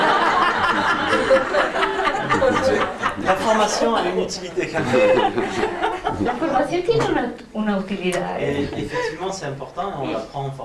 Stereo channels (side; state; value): both; identical; correlation 1.00